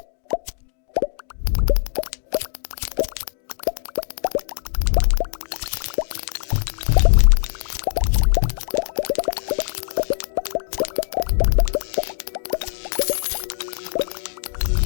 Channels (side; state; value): right; silent; digital silence